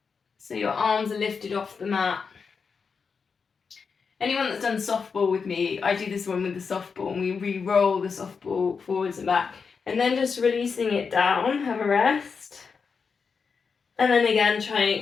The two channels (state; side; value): quieter; right; 5.5 dB